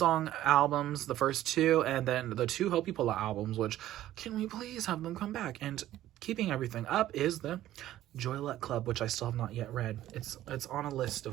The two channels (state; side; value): quieter; left; 13.6 dB